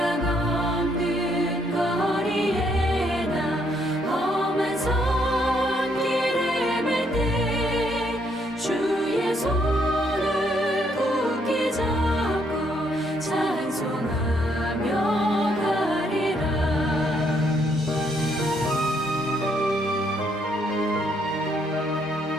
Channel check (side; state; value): both; normal; correlation 0.71